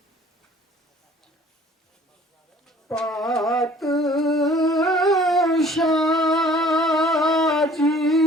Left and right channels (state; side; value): normal; both; correlation 0.52